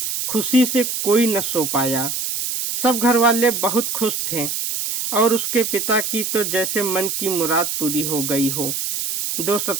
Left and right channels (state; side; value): noise; right; hiss, 3 dB below the sound